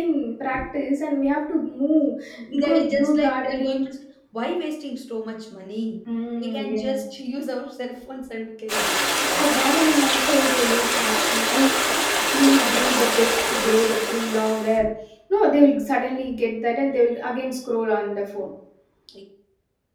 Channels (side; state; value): both; identical; correlation 1.00